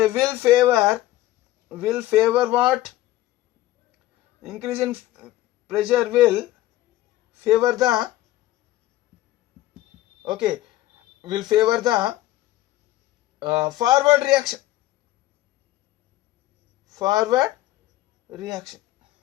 will favor what? Increase in pressure will favor the forward reaction.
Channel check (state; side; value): quieter; right; 15.6 dB